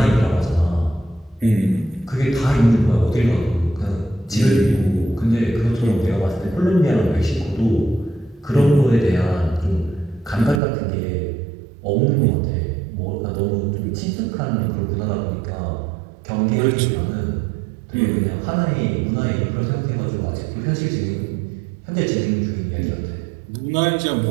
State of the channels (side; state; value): left; drops out; at 10.6 s